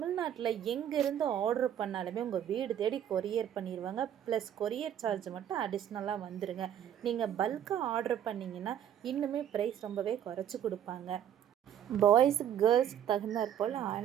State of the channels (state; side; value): quieter; left; 10.0 dB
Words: எங்கேருந்து ஆர்டர் பண்ணாலுமே உங்கள் வீடு தேடி கொரியர் பண்ணிடுவாங்க. ப்ளஸ் கொரியர் சார்ஜ் மட்டும் அடிஷ்னலாக வந்துடுங்க. நீங்கள் பல்காக ஆர்டர் பண்ணிங்கன்னா இன்னுமே ப்ரைஸ் ரொம்பவே குறைச்சி கொடுப்பாங்க. பாய்ஸு கேர்ள்ஸுக்கு தகுந்தாற் போல்